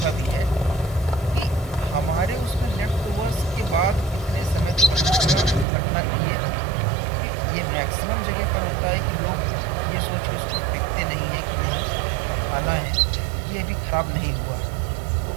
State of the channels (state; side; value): drops out; left; at 5.7 s